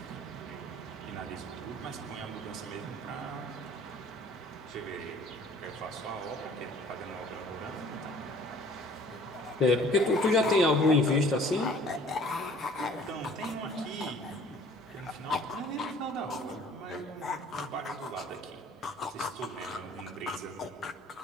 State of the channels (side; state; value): both; normal; correlation 0.52